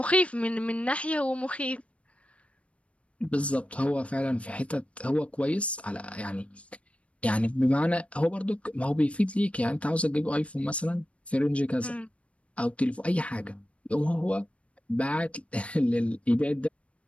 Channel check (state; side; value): late; right; 0.062 ms